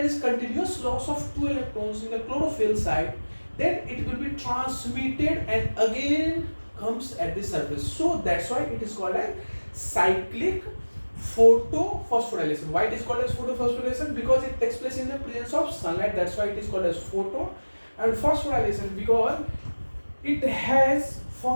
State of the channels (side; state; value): both; inverted; correlation -1.00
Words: is continuous loss of 2 electrons in the chlorophyll side, then it will be transmitted and again comes at the surface. So that's why it is called as cyclic photophosphorylation. Why it is called as photophosphorylation? Because it takes place in the presence of sunlight. That's why it is called as photo. And phosphorylation because it has